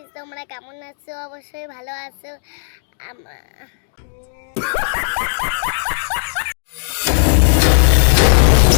তোমরা কেমন আছো? অবশ্যই ভালো আছো।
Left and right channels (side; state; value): right; silent; 67 dB below the other